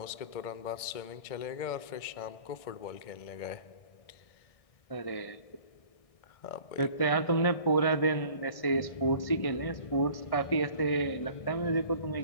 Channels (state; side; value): late; right; 1.6 ms